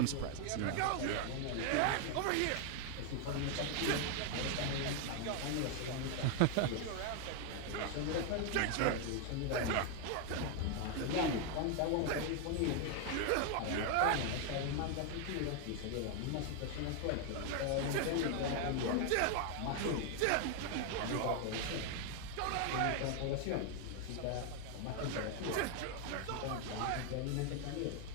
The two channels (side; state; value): both; different; correlation 0.01